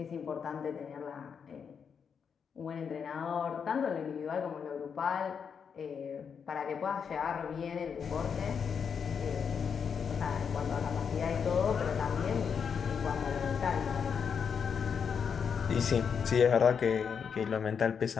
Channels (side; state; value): right; quieter; 6.7 dB